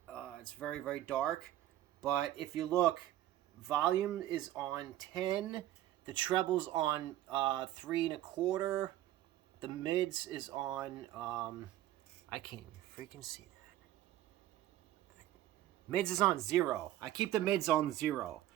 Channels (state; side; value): quieter; left; 13.8 dB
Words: It's very, very dark. But if you look, volume is on 10. The treble's on 3 1/4. The mids is on, I can't even freaking see that. Mids is on 0. I keep the mids on 0,